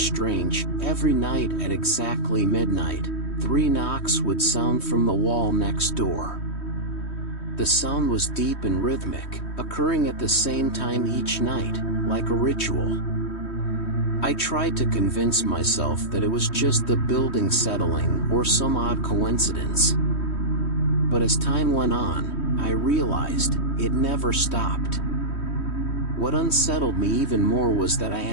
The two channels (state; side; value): late; right; 3.1 ms